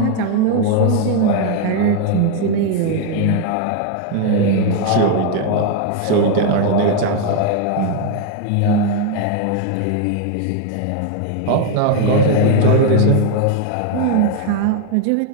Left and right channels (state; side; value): different; both; correlation 0.01